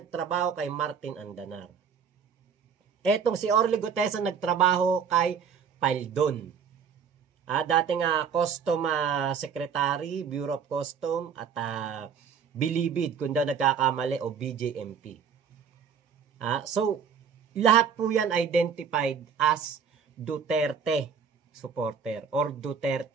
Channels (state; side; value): quieter; left; 6.8 dB